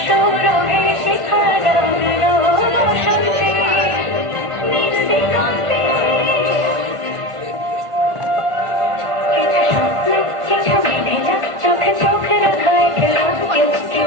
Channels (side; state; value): left; late; 1.5 ms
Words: সৌরভে শিখা জাগলো, বসন্তে নির্বিঘ্নে